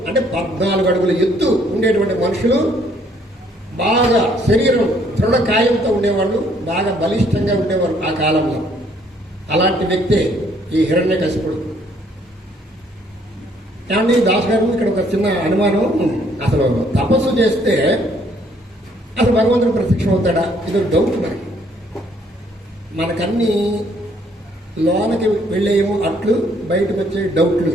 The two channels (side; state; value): both; normal; correlation 0.65